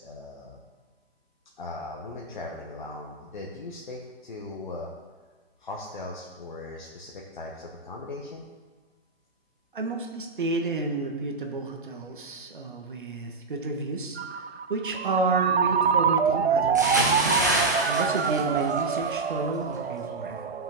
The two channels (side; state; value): left; quieter; 4.1 dB